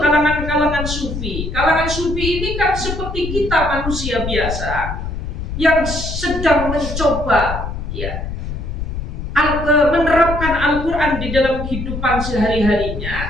kalangan-kalangan sufi. Kalangan sufi ini kan seperti kita manusia biasa yang sedang mencoba, ya, menerapkan Al-Quran di dalam kehidupan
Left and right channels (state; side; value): noise; left; rumble, 6 dB below the sound